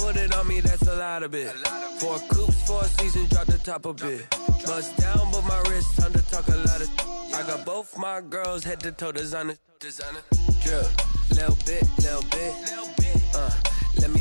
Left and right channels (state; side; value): inverted; both; correlation -1.00